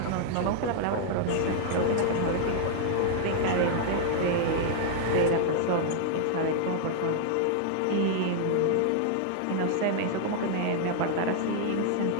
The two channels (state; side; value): different; both; correlation 0.00